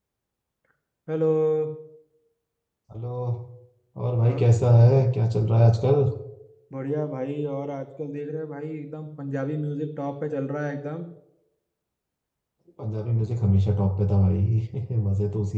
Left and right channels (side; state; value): both; identical; correlation 1.00